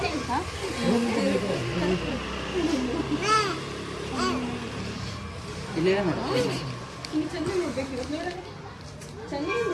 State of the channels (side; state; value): both; identical; correlation 1.00